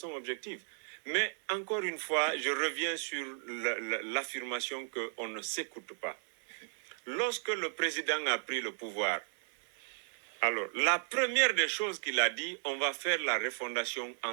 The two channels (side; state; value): left; silent; 54 dB below the other